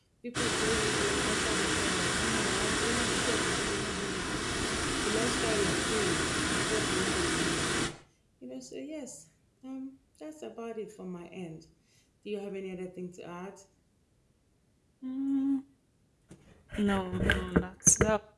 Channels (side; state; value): both; identical; correlation 1.00